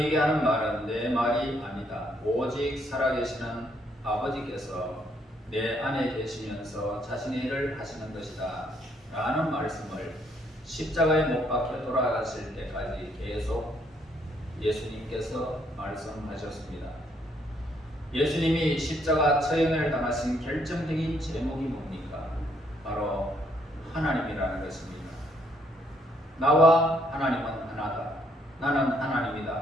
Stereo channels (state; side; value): normal; both; correlation 0.70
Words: 하는 말은 내 말이 아니다. 오직 살아계시는 아버지께서 내 안에 계시면서 자신의 일을 하시는 것이다 라는 말씀을 십자가에 못 박혀 돌아가실 때까지 계속 예수님께서 말씀하셨습니다. 예수님이 십자가 처형을 당하신 결정적인 제목이 뭡니까? 바로 하나님이라는 것입니다. 나와 하나님은 하나다. 나는